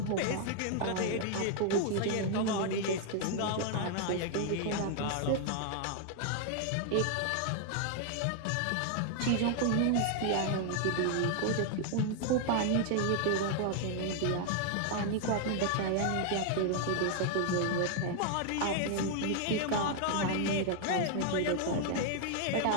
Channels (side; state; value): both; different; correlation 0.00